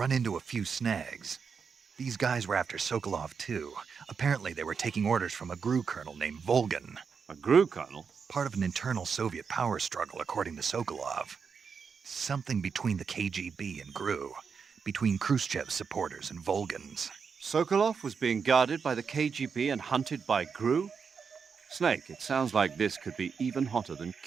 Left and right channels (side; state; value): left; quieter; 6.0 dB